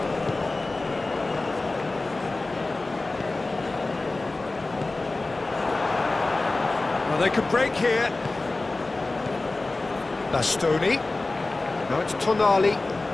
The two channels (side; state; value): right; quieter; 3.2 dB